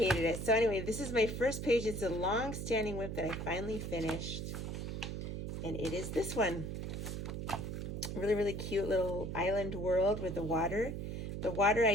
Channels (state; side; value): noise; right; hum, 5 dB below the sound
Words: it. So anyway, this is my first page. It's a long-standing WIP that I finally finished. And it is this one. Really, really cute little island world with the water. The water